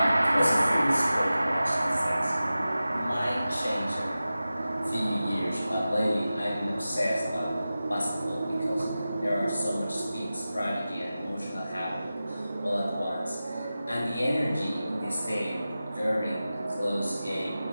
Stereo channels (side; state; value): both; inverted; correlation -0.95